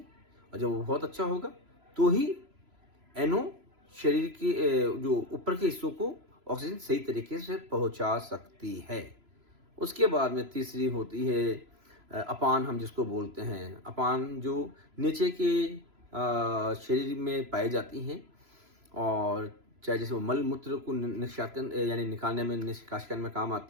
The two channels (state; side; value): late; left; 3.0 ms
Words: और जब वो बहुत अच्छा होगा तो ही NO शरीर के जो ऊपर के हिस्सों को ऑक्सीजन सही तरीके से पहुंचा सकती है। उसके बाद में तीसरी होती है अपान, हम जिसको बोलते हैं। अपान जो नीचे के शरीर में पाई जाती हैं और चाहे जैसे वो मल मूत्र को निष्कासन यानी निकालने में, निष्कासन करने में काम